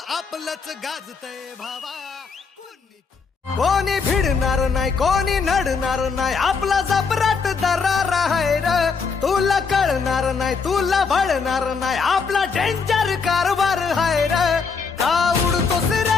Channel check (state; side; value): quieter; right; 5.2 dB